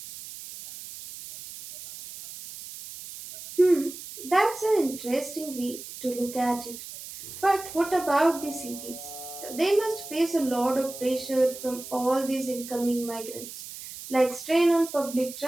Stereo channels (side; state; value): right; noise; hiss, 12 dB below the sound